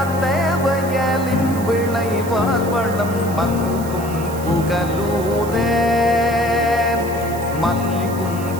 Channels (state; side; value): noise; right; hiss, 15 dB below the sound